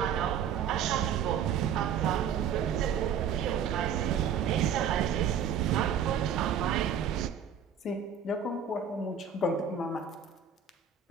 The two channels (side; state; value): left; quieter; 7.5 dB